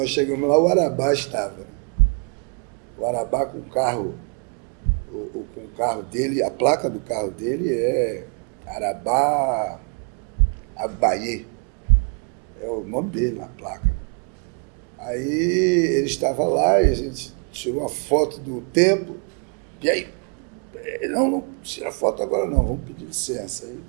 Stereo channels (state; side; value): quieter; left; 39.5 dB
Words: chegamos lá, o Arabá estava. O Arabá com o carro com o carro dele, a placa do carro dele é Arabá Abaie, é o nome dele na placa. Aí ele estava lá e a gente tirou uma foto do templo, e aí, não tira foto agora não, vamos pedir licença. Aí